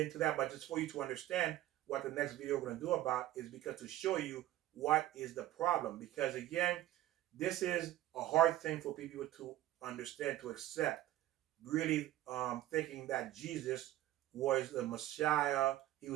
that, but just for you to understand what the next video we're going to do about is because to show you what is the problem. Because again, this is a hard thing for people to understand, to accept. Really thinking that Jesus was the Messiah. He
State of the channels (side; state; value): left; quieter; 14.4 dB